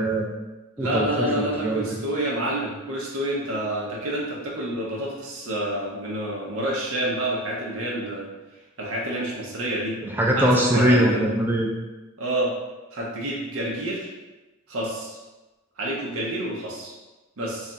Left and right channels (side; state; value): both; normal; correlation 0.35